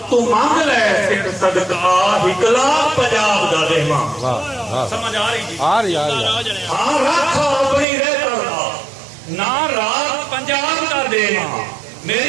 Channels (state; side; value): drops out; left; at 7.9 s